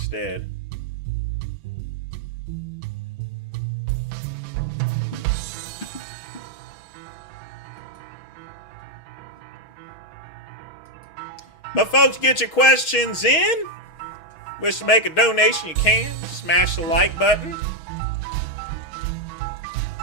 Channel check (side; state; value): right; late; 6.3 ms